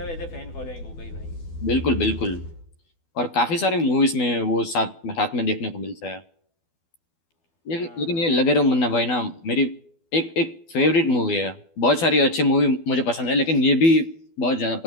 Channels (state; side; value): late; right; 12 ms